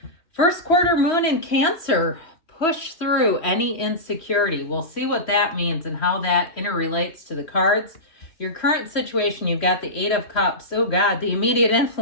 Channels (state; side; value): late; right; 3.1 ms